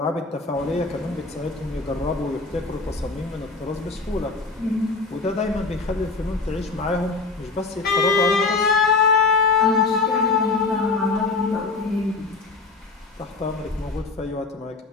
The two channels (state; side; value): quieter; right; 3.9 dB